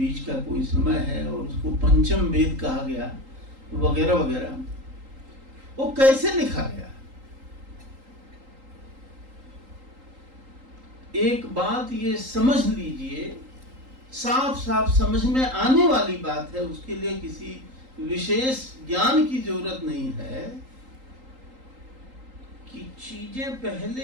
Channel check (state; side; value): late; left; 3.8 ms